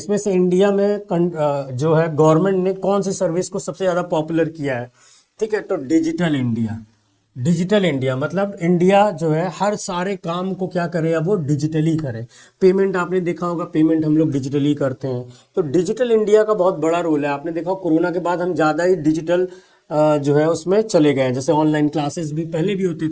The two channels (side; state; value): both; identical; correlation 1.00